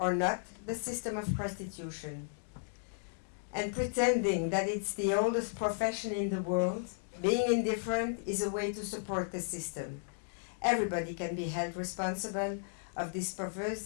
not the system of prostitution. And pretending that it's the oldest profession in the world, being indifferent is a way to support the system. Everybody can be held responsible of this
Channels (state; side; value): silent; right; digital silence